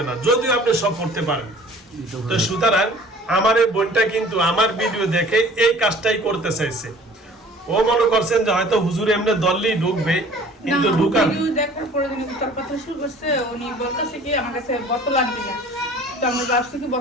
না, যদিও আপনি সব পড়তে পারেন। তো সুতরাং আমার এই বোনটা কিন্তু আমার ভিডিও দেখে এই কাজটাই করতে চাইছে। ও মনে করছেন যে হয়তো হুজুর এমনি দললেই ঢুকবে, কিন্তু না, ঢুকার ভিডিও দেখার পরে যিনি তার কথা শুরু করছে, উনি বলতেছে কি আমার কাছে বোতল আনবি না। তো আমরা ভাবছি কি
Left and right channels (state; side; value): normal; both; correlation 0.49